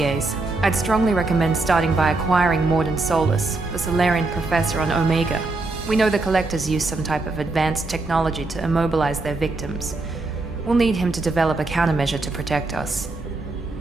I'd strongly recommend starting by acquiring Morden Solus, the Solarian professor on Omega. We know the Collectors use some type of advanced technology to immobilize their victims. We'll need him to develop a countermeasure to protect us.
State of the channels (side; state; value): left; quieter; 3.3 dB